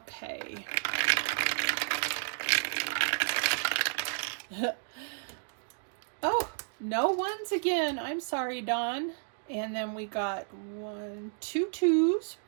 Oh, no 1s again. I'm sorry, Dawn. And then we got 2 2s.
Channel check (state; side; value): silent; left; digital silence